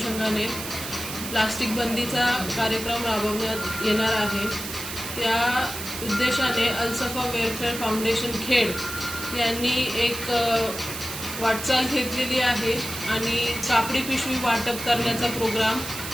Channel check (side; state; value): right; noise; hiss, 8 dB below the sound